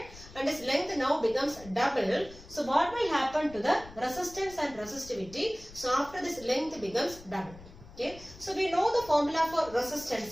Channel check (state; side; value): noise; left; rumble, 19 dB below the sound